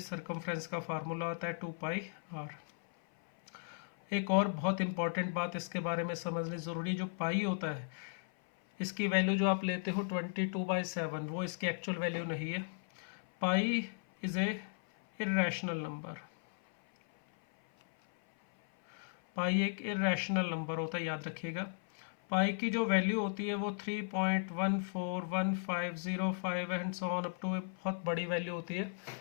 का फार्मूला आता है 2πr। एक और बहुत इंपॉर्टेंट बात इसके बारे में समझनी ज़रूरी, जो पाई होता है इसकी वैल्यू जो आप लेते हो 22/7, वो इसकी एक्चुअल वैल्यू नहीं है। पाई इज़ ए इर्रेशनल नंबर, पाई एक इर्रेशनल नंबर होता है, याद रखिएगा। पाई की जो वैल्यू होती है वो 3.141505 and so on up to, बहुत बड़ी वैल्यू होती है।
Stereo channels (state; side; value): silent; right; 54 dB below the other